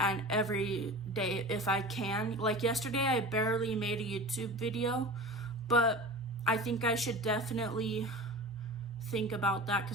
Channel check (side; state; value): both; normal; correlation 0.34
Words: every day if I can. Like yesterday I barely made a YouTube video, but I think I should definitely think about that,